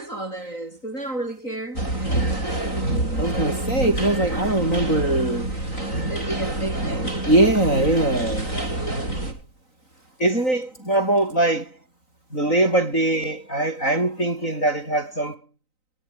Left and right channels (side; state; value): right; late; 3.9 ms